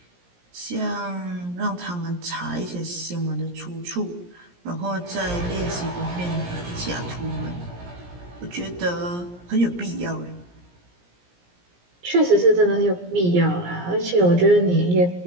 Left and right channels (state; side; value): late; left; 17 ms